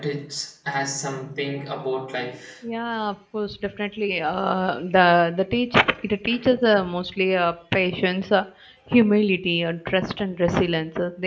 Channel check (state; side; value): identical; both; correlation 1.00